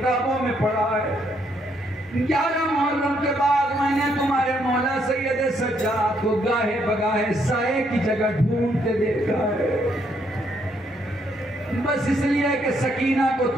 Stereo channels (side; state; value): both; normal; correlation 0.72